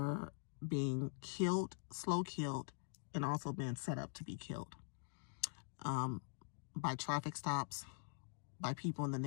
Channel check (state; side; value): silent; right; digital silence